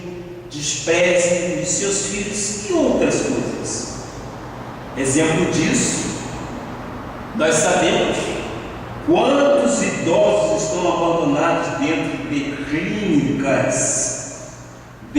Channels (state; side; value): identical; both; correlation 1.00